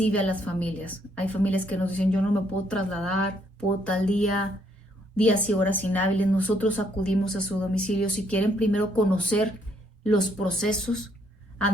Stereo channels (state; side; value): normal; both; correlation 0.70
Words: a las familias, hay familias que nos dicen: yo no me puedo trasladar, puedo tal día, días y horas inhábiles. Nosotros acudimos a su domicilio. Si quieren primero conocer los procesos